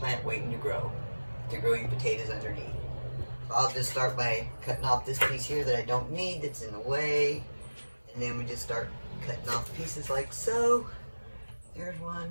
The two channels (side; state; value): both; inverted; correlation -1.00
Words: waiting to grow your potatoes underneath. So I'll just start by cutting off this piece here that I don't need, that's in the way, and then we just start cutting off pieces like so. There's one.